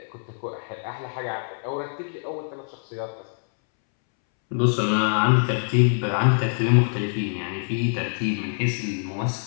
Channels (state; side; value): silent; right; 62 dB below the other